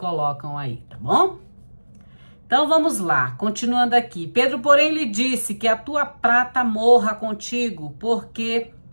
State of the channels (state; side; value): inverted; both; correlation -1.00